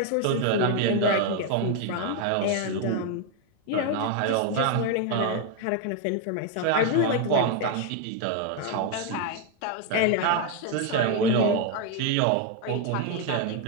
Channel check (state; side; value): different; both; correlation 0.01